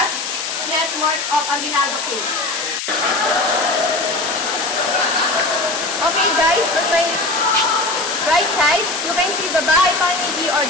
network of Aguinaldo Cave. Okay guys, on my right side, you can see the Bahay Panigi or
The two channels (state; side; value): noise; left; hiss, 4 dB below the sound